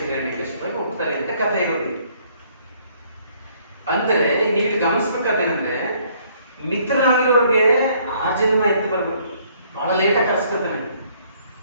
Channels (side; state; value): both; inverted; correlation -0.64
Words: ಹೋಗ್ತಾರೆ ಅಂತ ಕಥೆ ಇರೋದು. ಅಂದರೆ ನೀವು ಗಮನಿಸ್ಬೇಕಾದೇನಂದ್ರೆ, ಮಿತ್ರನಾಗಿರೋರಿಗೆ ಆ ಜನ್ಮ ಎತ್ತಿ ಬರ್ಬೇಕು, ಬಹಳ ಲೇಟಾಗಿ ಕರ್ಸ್ಕೊತಾನೆ.